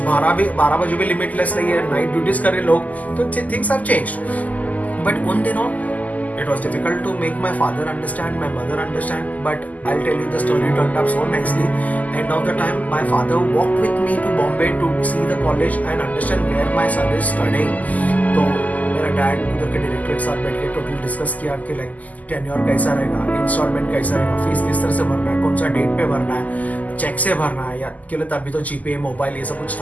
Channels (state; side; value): late; right; 0.077 ms